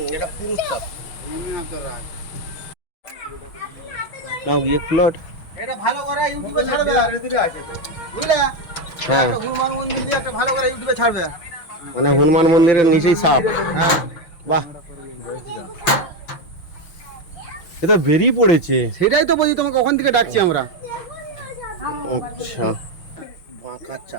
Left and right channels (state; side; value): late; right; 5.9 ms